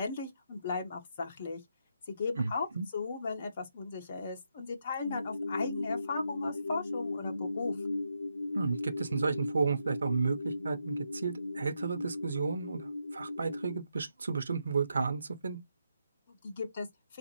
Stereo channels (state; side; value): inverted; both; correlation -0.81